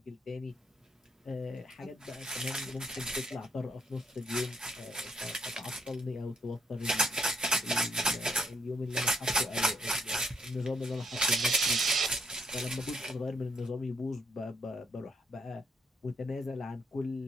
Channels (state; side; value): normal; both; correlation 0.72